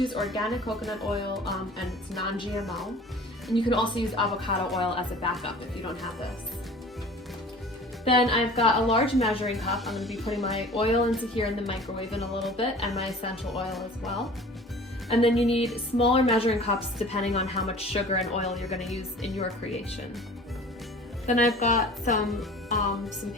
organic coconut oil and it's non-GMO. And you can also use avocado oil as a backup if you don't have this. Then I've got a large measuring cup. I'm going to be putting my oil into here in the microwave in a little bit and my essential oil as well. And then you need smaller measuring cups depending on how much sugar and oil you're going to use in your creation. Then I've got some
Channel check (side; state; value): both; normal; correlation 0.44